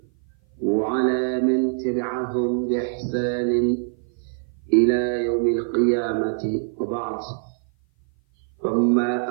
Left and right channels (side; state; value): left; silent; 56 dB below the other